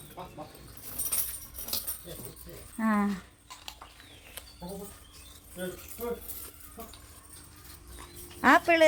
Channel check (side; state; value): both; identical; correlation 1.00